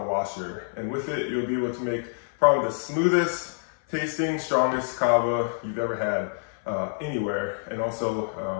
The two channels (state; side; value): silent; right; 58 dB below the other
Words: washer, and with it you'll be able to make probably the smoothest tasting, strongest Kawa you've ever had anywhere, and also